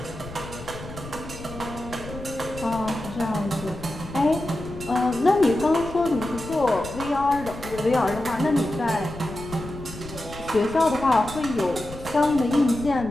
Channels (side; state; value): left; noise; rumble, 13 dB below the sound